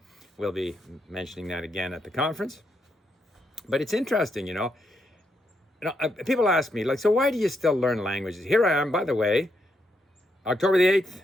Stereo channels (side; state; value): both; normal; correlation 0.79